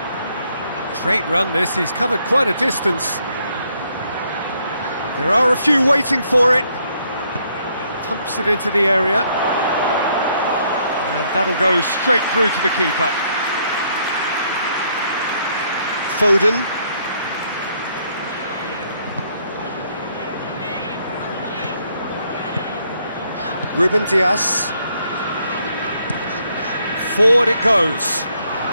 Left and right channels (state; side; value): inverted; both; correlation -0.71